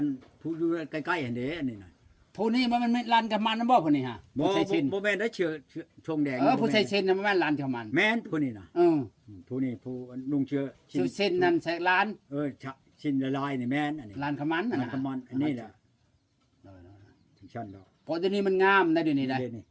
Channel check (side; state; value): both; identical; correlation 1.00